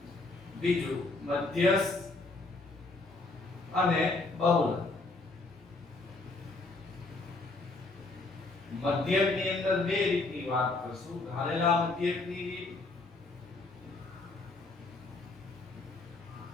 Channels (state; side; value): quieter; right; 3.3 dB